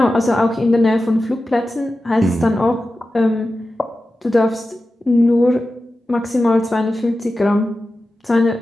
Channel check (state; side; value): normal; both; correlation 0.93